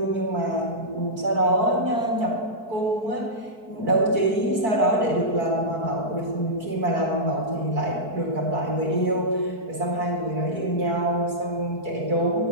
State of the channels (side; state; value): left; late; 4.6 ms